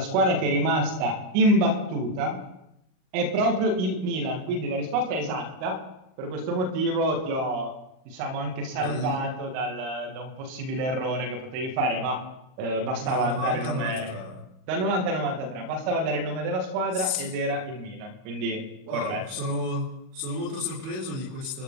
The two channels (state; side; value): late; left; 38 ms